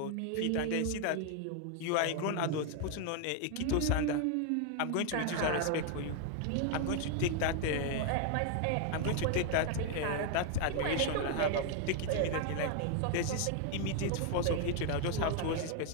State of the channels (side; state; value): both; different; correlation 0.00